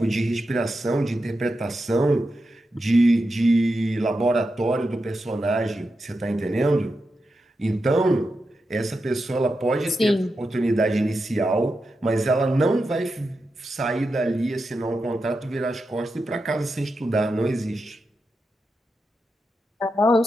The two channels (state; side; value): normal; both; correlation 0.88